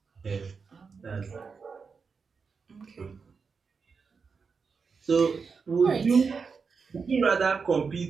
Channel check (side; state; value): left; quieter; 5.3 dB